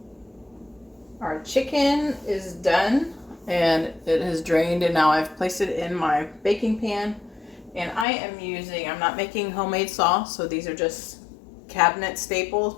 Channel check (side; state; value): right; drops out; at 8.1 s